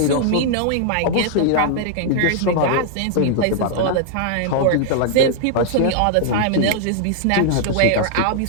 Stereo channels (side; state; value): both; different; correlation -0.01